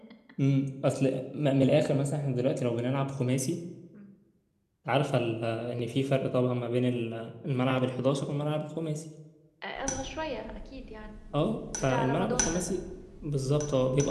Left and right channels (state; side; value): identical; both; correlation 1.00